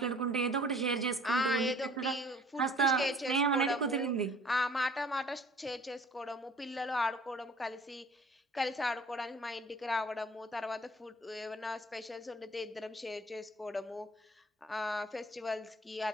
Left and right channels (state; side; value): normal; both; correlation 0.52